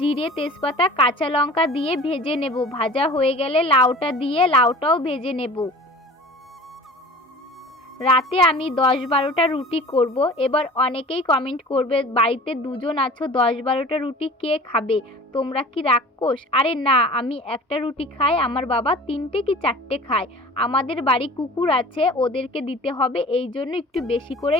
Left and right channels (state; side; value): normal; both; correlation 0.42